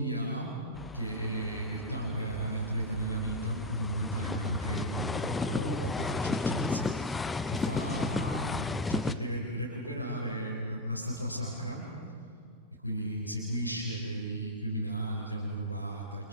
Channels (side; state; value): both; normal; correlation -0.02